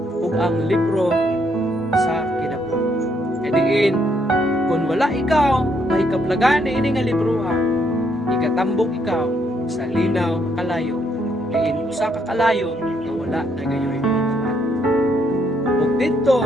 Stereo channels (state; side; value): normal; both; correlation 0.73